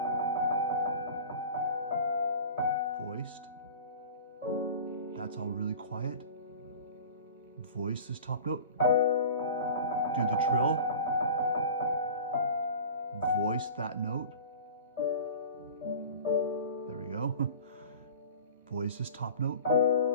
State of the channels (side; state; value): both; inverted; correlation -0.38